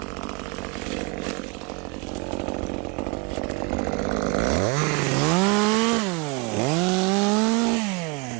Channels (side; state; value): left; quieter; 29.1 dB